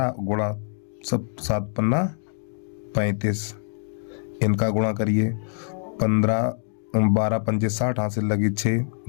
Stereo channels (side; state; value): right; silent; digital silence